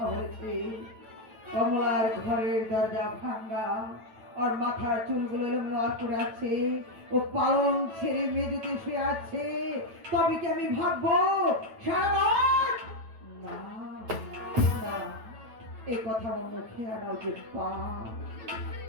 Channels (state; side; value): late; left; 9.1 ms